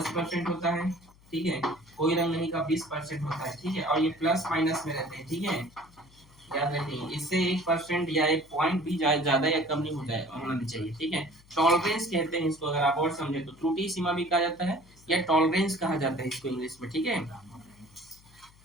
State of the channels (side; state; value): left; noise; hum, 27 dB below the sound